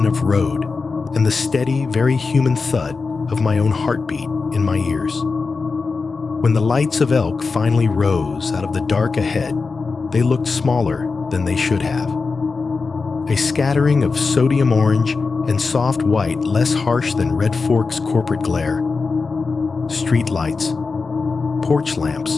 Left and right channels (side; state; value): right; quieter; 4.4 dB